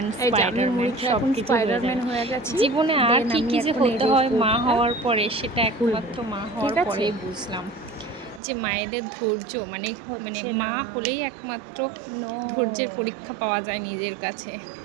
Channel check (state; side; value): drops out; left; at 8.4 s